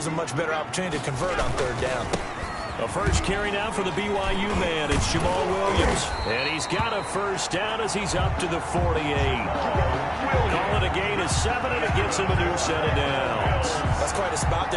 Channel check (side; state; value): both; identical; correlation 1.00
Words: him a much better opportunity to convert on third down. A first carry now for the BYU man. It's Jamal Williams. And he's got a first down as he's up to the 48. Call it a gain of 7, and it gets him a new set of downs. That's quite a spot